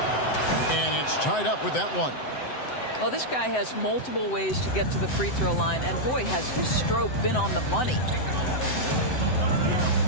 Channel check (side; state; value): right; late; 7.8 ms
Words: And it's tied up with that one. Well, this guy has multiple ways to get to the free throw line, and boy, has his stroke been on the money.